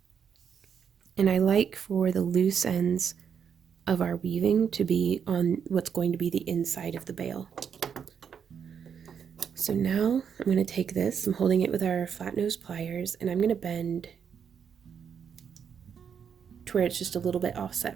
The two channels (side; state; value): left; quieter; 7.4 dB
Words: And I like for the loose ends of our weaving to be on what's going to be the inside of the bail. So now I'm going to take this, I'm holding it with our flat nose pliers, and I'm going to bend to where it's just a little bit